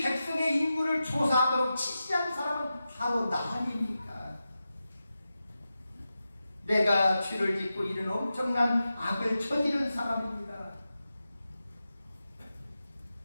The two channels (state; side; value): inverted; both; correlation -0.92